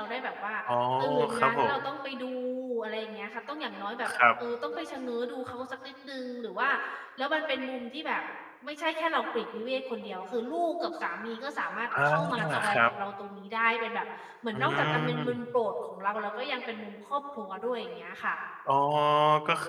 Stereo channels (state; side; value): identical; both; correlation 1.00